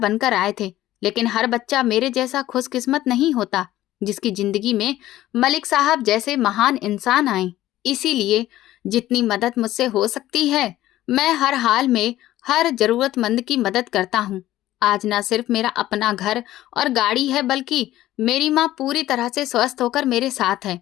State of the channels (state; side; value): quieter; right; 14.7 dB